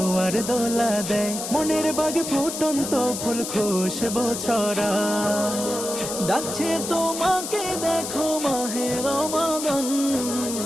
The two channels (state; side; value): noise; left; hiss, 6 dB below the sound